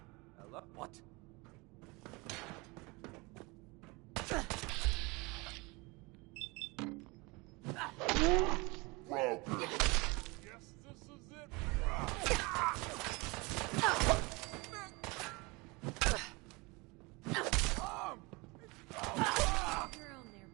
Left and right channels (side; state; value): left; quieter; 26.0 dB